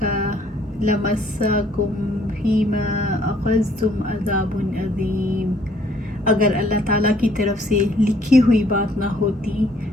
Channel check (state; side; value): normal; both; correlation 0.62